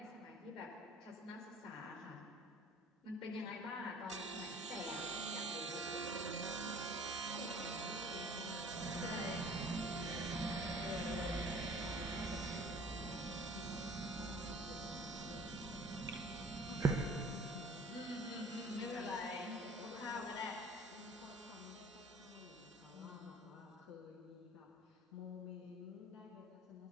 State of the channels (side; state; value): both; normal; correlation 0.49